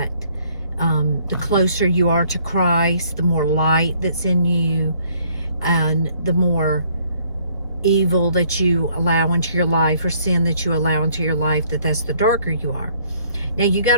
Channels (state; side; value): inverted; both; correlation -0.63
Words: the closer you are to Christ, the more light that's in you, and the more evil that you allow into your life, or sin that you allow into your life, that's the darker you are. Now you got